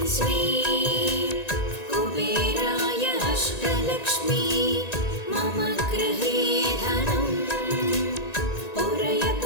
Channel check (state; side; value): late; right; 1.9 ms